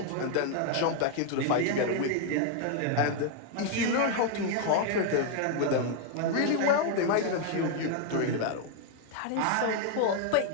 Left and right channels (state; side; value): different; both; correlation 0.00